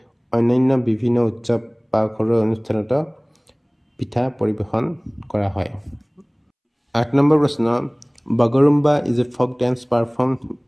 অন্যান্য বিভিন্ন উৎসৱ বা ঘৰুৱা অনুষ্ঠানত পিঠা পৰিৱেশন কৰা হয় 8 নম্বৰ প্ৰশ্ন Bagurumba is a folk dance perform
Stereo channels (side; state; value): both; identical; correlation 1.00